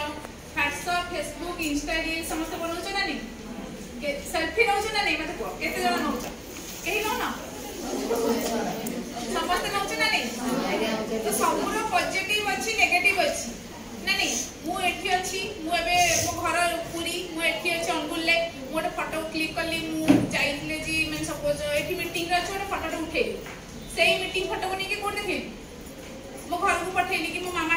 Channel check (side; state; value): both; identical; correlation 1.00